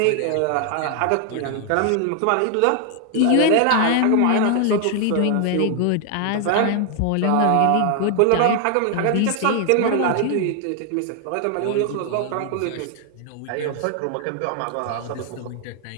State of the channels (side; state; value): both; different; correlation 0.00